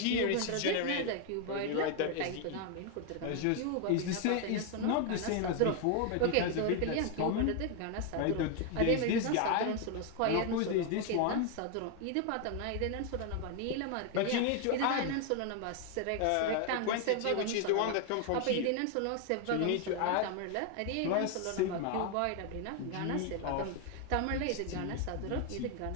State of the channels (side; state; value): both; different; correlation 0.01